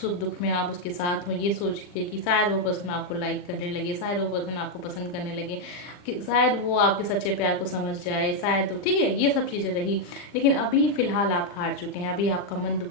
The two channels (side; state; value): right; late; 40 ms